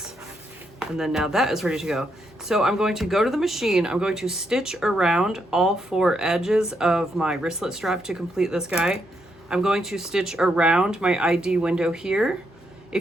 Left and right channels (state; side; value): normal; both; correlation 0.79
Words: And then now that is ready to go. So I'm going to go to the machine. I'm going to stitch around all 4 edges of my wristlet strap to complete this guy. I'm going to stitch around my ID window here.